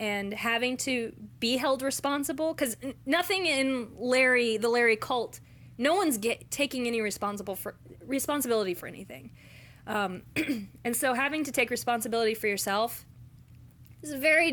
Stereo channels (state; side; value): identical; both; correlation 1.00